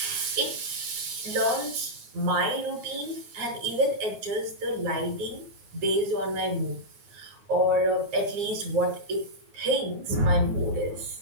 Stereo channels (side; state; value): left; late; 9.1 ms